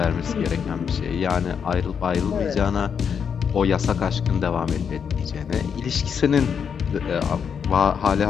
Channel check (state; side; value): quieter; right; 7.1 dB